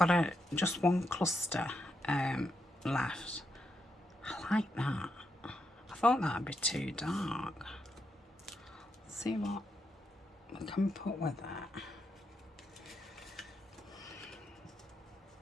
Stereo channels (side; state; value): both; normal; correlation 0.82